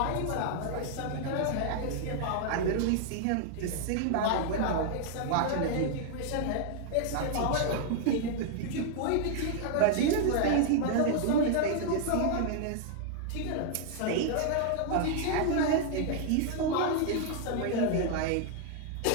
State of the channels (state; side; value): different; both; correlation 0.00